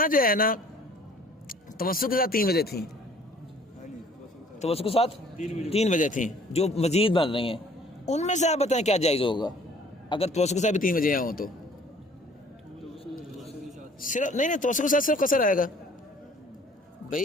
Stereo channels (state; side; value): normal; both; correlation 0.55